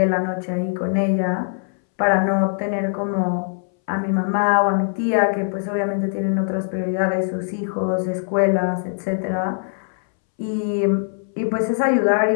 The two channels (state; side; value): silent; right; 63 dB below the other